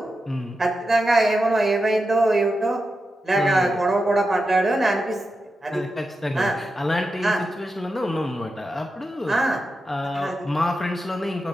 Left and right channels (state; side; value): normal; both; correlation 0.89